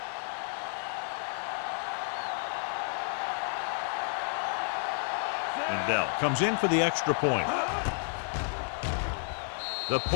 Bell comes in for the extra point. The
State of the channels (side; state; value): right; silent; 56 dB below the other